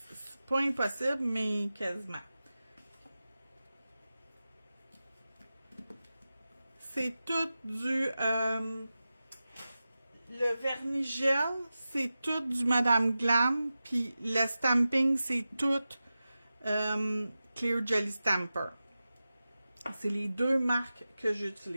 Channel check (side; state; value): both; inverted; correlation -0.94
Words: pas impossible, mais quasiment. C'est tout du... le vernis gel, c'est tout du Madame Glam. Puis le stamping, c'est tout Clear Jelly Stamper. C'est les 2 marques que